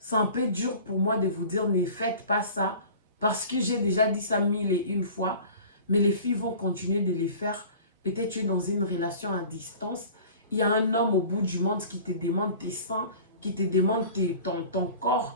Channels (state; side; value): inverted; both; correlation -0.43